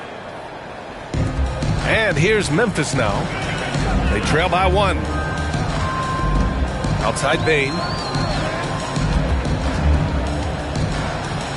And here's Memphis now. They trail by 1. Outside Bane.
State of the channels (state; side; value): identical; both; correlation 1.00